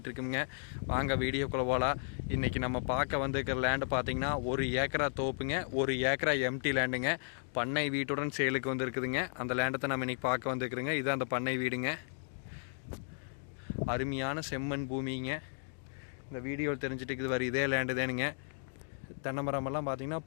இருக்குங்க. வாங்க வீடியோக்குள்ளே போகலாம். இன்றைக்கி நம்ம பார்க்க வந்துருக்கிற லேண்டு பார்த்திங்கன்னா 1 ஏக்கரா தோப்புங்க, 1 ஏக்கரா எம்டி லேண்டுங்க. பண்ணை வீட்டுடன் சேலுக்கு வந்துருக்குதுங்க. அந்த லேண்டை நம்ம இன்றைக்கி பார்க்க வந்துருக்குறோங்க. இது அந்த பண்ணை வீடுங்க. அருமையான செம்மண் பூமிங்க. இந்த வீடியோவில் தெரிஞ்சுட்டு இருக்குது வர இதே லேண்டு தானுங்க. தென்னை மரமெல்லாம் பார்த்திங்கன்னா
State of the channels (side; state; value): right; silent; digital silence